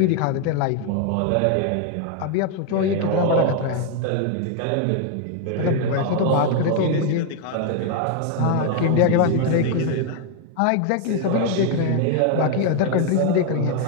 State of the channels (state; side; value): different; both; correlation 0.00